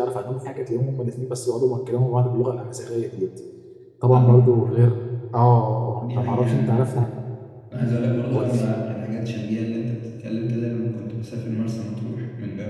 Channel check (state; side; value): identical; both; correlation 1.00